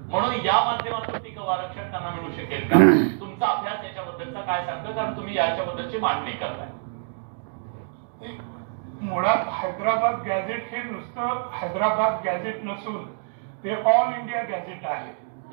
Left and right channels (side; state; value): left; silent; digital silence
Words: म्हणून या माध्यमातून टिकाऊ आरक्षण त्यांना मिळू शकेल का? तुमचा अभ्यास याच्याबद्दलचा काय सांगतो, कारण तुम्ही याच्याबद्दलची मांडणी करताय. मुळात हैदराबाद गॅझेट हे नुसतं हैदराबाद गॅझेट नसून ते ऑल इंडिया गॅझेट आहे.